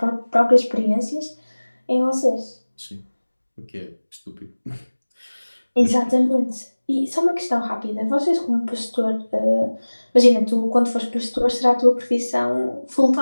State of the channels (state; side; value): inverted; both; correlation -1.00